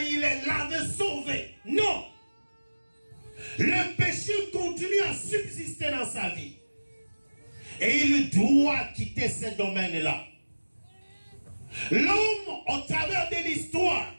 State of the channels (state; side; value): inverted; both; correlation -1.00